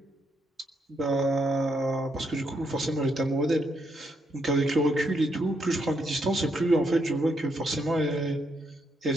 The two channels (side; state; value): both; normal; correlation 0.77